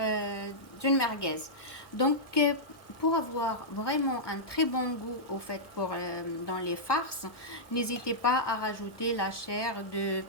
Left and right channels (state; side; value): late; right; 1.1 ms